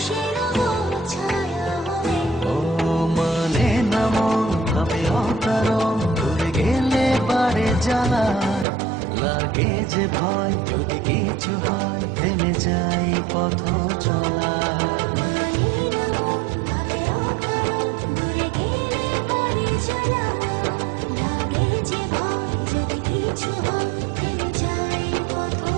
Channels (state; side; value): drops out; left; at 8.7 s